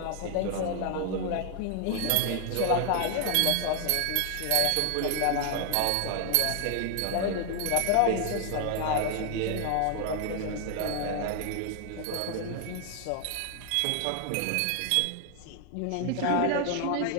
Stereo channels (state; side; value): different; both; correlation 0.00